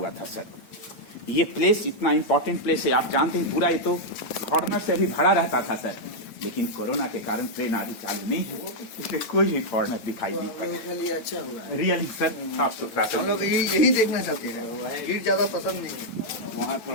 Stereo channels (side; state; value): right; late; 9.2 ms